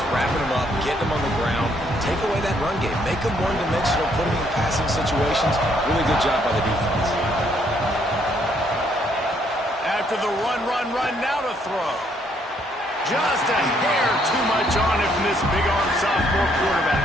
wrapping them up, getting them on the ground, take away that run game, make them one-dimensional, put them in passing situations. Really good job by the defense. After the run, now to throw. Just a hair too much on it from this big-arm sophomore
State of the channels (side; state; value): both; normal; correlation 0.69